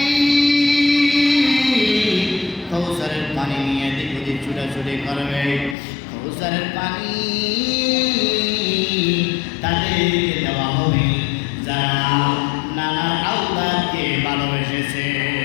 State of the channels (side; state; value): right; drops out; at 5.8 s